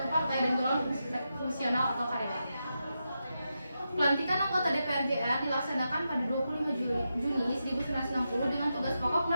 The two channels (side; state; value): both; inverted; correlation -0.87